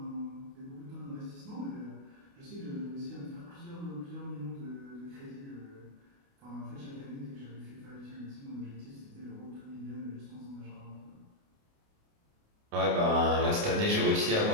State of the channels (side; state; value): left; late; 29 ms